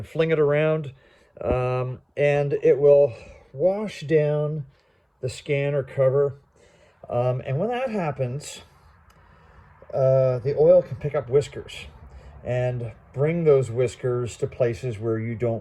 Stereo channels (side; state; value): both; identical; correlation 1.00